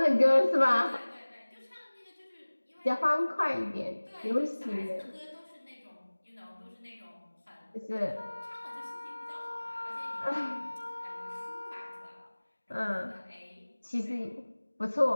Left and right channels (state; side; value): inverted; both; correlation -1.00